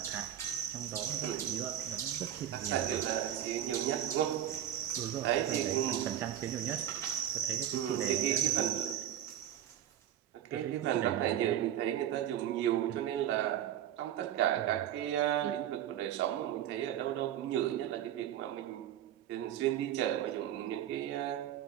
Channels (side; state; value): left; quieter; 10.9 dB